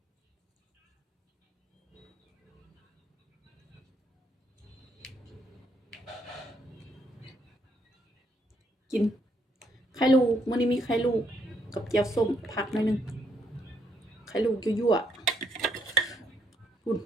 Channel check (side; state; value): both; normal; correlation 0.73